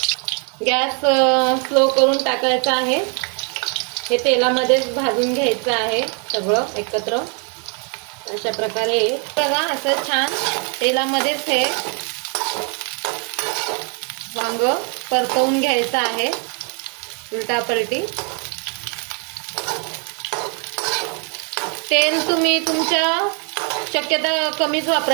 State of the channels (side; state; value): left; quieter; 39.5 dB